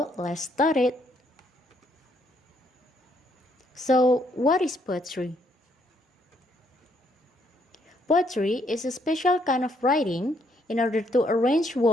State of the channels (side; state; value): both; normal; correlation 0.71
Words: let's start it. So, what is poetry? Poetry is a special kind of writing in order to arrange